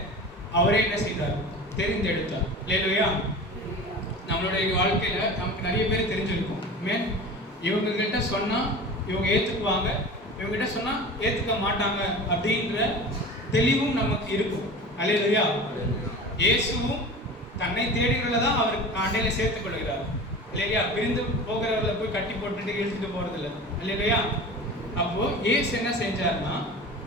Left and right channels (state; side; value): normal; both; correlation 0.35